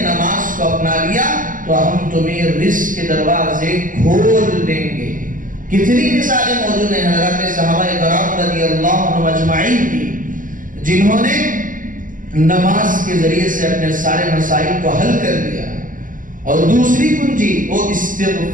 نماز کو اپنا لیا تو ہم تمہیں رزق کے دروازے کھول دیں گے. کتنی مثالیں موجود ہیں حضرات صحابہ کرام رضی اللہ عنہم اجمعین کی، جنہوں نے نماز کے ذریعے سے اپنے سارے مسائل کو حل کر دیا. اور دوسری کنجی وہ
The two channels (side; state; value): left; late; 0.39 ms